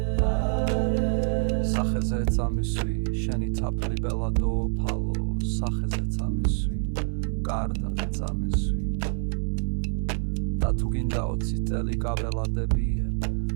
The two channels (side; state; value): left; silent; digital silence